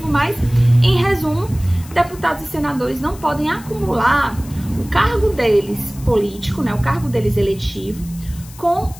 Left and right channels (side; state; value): left; noise; hiss, 20 dB below the sound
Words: mas, em resumo, deputados e senadores não podem acumular o cargo deles político, né, o cargo deles eletivo, com